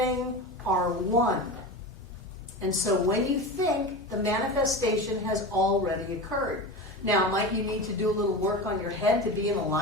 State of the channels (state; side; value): normal; both; correlation 0.27